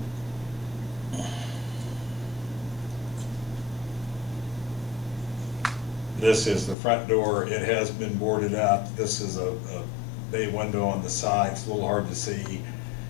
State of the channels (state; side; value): drops out; right; at 6.8 s